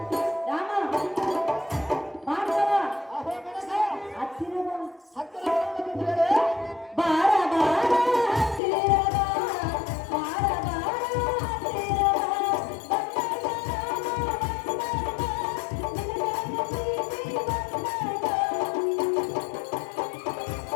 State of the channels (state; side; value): drops out; right; at 8.6 s